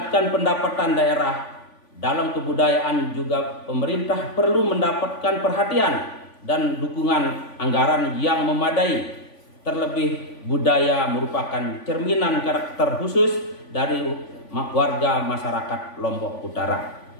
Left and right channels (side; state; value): right; late; 3.5 ms